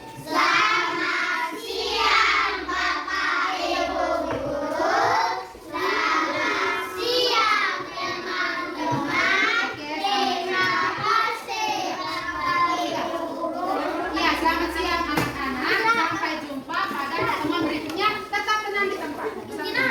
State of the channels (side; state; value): both; identical; correlation 1.00